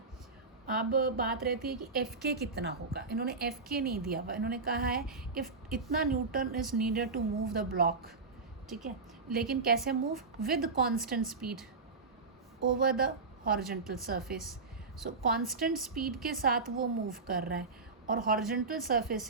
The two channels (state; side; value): quieter; left; 4.2 dB